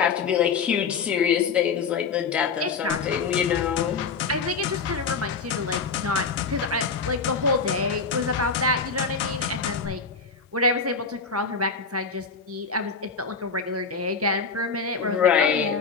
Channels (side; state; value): right; quieter; 5.1 dB